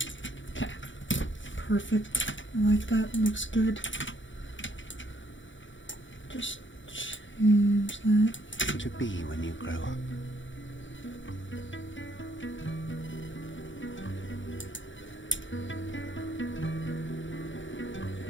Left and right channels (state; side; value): late; right; 0.55 ms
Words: Okay. Perfect. I like that. Looks good. Just change that. To be when you grow up.